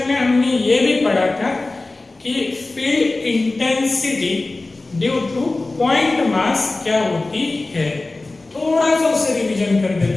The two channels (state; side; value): quieter; right; 3.2 dB